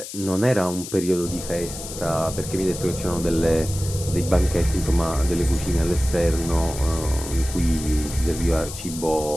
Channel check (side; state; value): left; noise; hiss, 10 dB below the sound